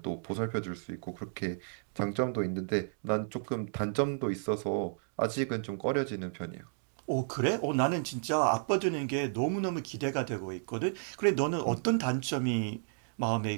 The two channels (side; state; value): left; silent; digital silence